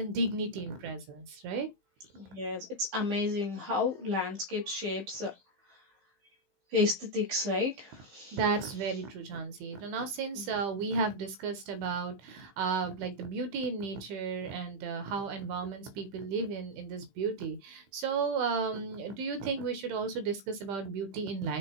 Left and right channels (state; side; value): late; left; 15 ms